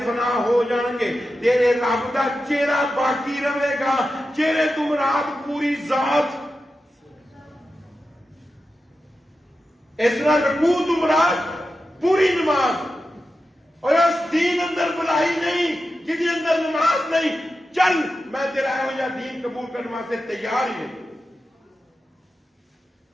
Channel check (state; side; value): normal; both; correlation 0.91